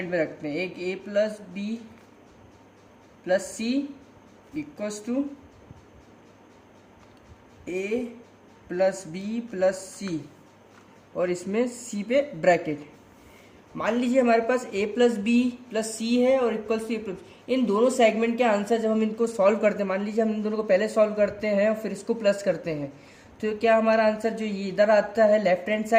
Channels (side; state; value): both; identical; correlation 1.00